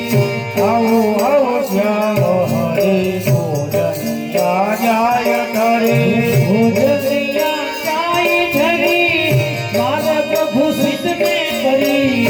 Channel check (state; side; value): identical; both; correlation 1.00